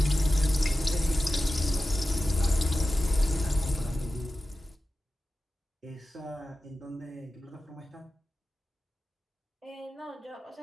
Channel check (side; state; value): both; normal; correlation 0.94